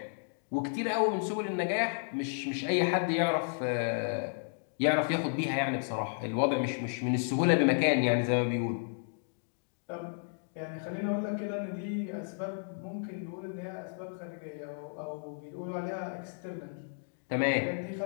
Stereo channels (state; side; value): silent; right; digital silence